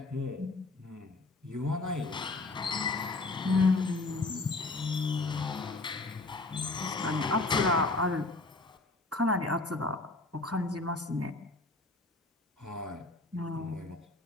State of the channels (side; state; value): right; quieter; 3.2 dB